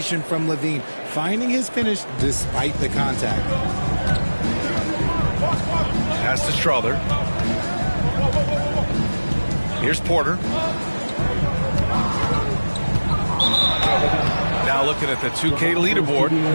from Levine, finding his finish despite the contact. Pass to Strother. Here's Porter. Now looking at the 2K leaderboard,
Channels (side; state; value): both; inverted; correlation -1.00